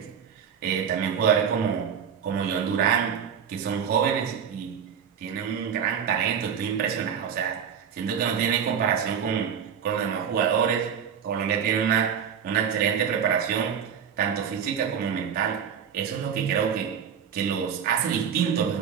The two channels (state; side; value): quieter; left; 7.7 dB